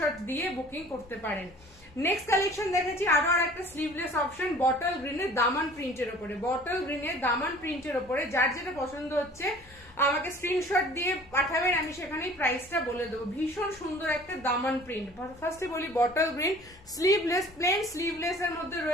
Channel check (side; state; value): both; normal; correlation 0.48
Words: দিয়ে বুকিং করতে পারেন। নেক্সট কালেকশন দেখেছি আরো আর একটা স্লিভলেস অপশন, বটল গ্রিনের দামান প্রিন্টের উপরে। বটল গ্রিনের দামান প্রিন্টের উপরে যার যেটা পছন্দ হচ্ছে আমাকে স্ক্রিনশট দিয়ে পাঠাবেন, আমি সেখানেই প্রাইসটা বলে দেবো। ভীষণ সুন্দর একটা দামান প্রিন্ট। ফার্স্টে বলি bottle green, sleeveless, plain sleeveless এর মধ্যে